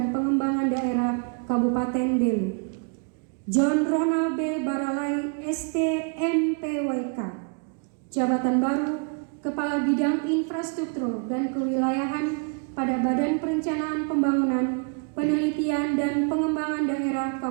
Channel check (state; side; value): quieter; left; 39.8 dB